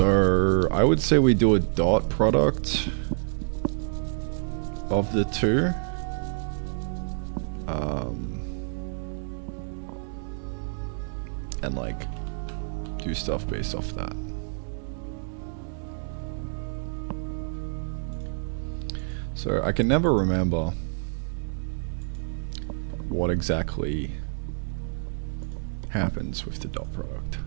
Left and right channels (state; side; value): silent; left; digital silence